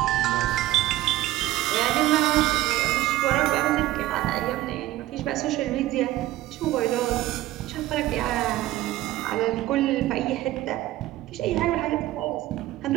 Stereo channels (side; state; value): left; quieter; 15.6 dB